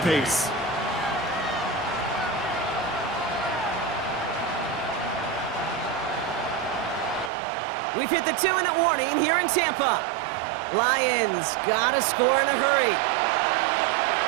We've hit the 2-minute warning here in Tampa. Lions gotta score in a hurry.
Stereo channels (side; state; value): left; drops out; at 7.3 s